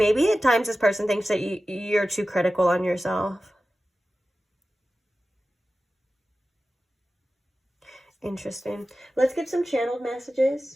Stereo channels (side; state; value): both; normal; correlation 0.94